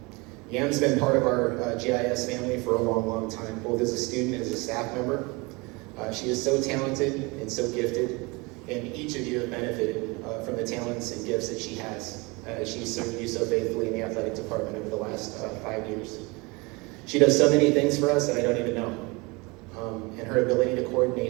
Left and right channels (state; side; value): quieter; left; 26.4 dB